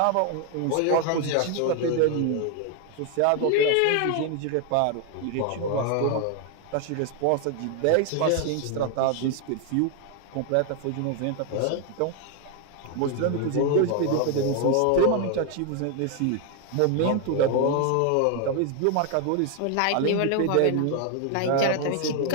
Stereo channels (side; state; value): both; different; correlation 0.01